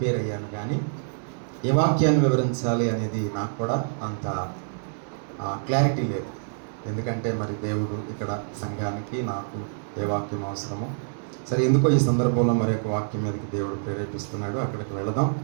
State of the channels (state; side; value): silent; left; digital silence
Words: అయ్యాను, కానీ ఏ వాక్యాన్ని వివరించాలి అనేది నాకు కూడా అంత క్లారిటీ లేదు. ఎందుకంటే మరి దేవుడు ఇక్కడ సంఘానికి నాకు ఏ వాక్యం అవసరమో, సరే ఎందుకో ఈ సందర్భంలో మరి ఒక వాక్యం మీదకి దేవుడు ప్రేరేపిస్తున్నాడు. అక్కడికి వెళదాం.